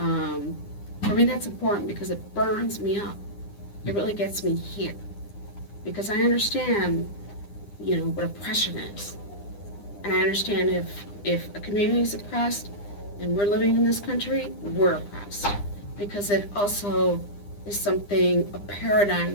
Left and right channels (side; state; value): right; late; 9.9 ms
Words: for me that's important because it burns me up. It really gets me here. Because I understand, you know, what oppression is. And I understand if a community is oppressed and we're living in this country, we're oppressed. Because it also is something, a paradigm